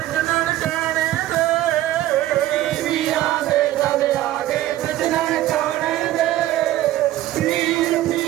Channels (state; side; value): quieter; left; 14.5 dB